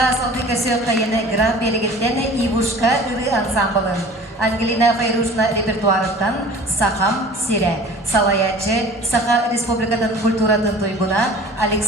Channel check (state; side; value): normal; both; correlation 0.44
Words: салды көсөк қайыны гран белгілдені Ивушка ұры ансамблын. Ангелина Файрушна репертуарыттан Сахам Сире. Салаячы Саха Республикатын культуратын тойгуна